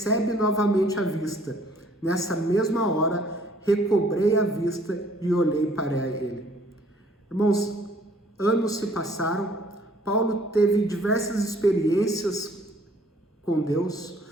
novamente a vista. Nessa mesma hora, recobrei a vista e olhei para ele. Irmãos, anos se passaram, Paulo teve diversas experiências com Deus,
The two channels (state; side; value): normal; both; correlation 0.59